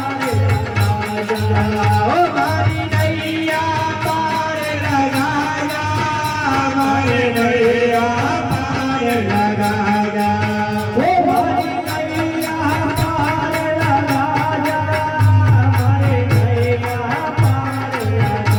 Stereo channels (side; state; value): both; identical; correlation 1.00